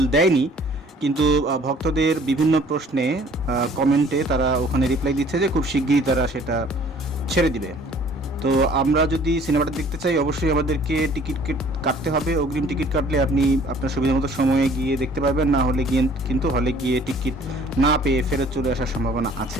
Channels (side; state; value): both; normal; correlation 0.54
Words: দেয়নি, কিন্তু ভক্তদের বিভিন্ন প্রশ্নে কমেন্টে তারা ওখানে রিপ্লাই দিচ্ছে যে খুব শিগগিরই তারা সেটা ছেড়ে দিবে। তো আমরা যদি সিনেমাটা দেখতে চাই, অবশ্যই আমাদেরকে টিকিট কাটতে হবে। অগ্রিম টিকিট কাটলে আপনি আপনার সুবিধা মতো সময়ে গিয়ে দেখতে পারবেন, না হলে গিয়ে কিন্তু হলে গিয়ে টিকিট না পেয়ে ফেরত চলে আসার সম্ভাবনা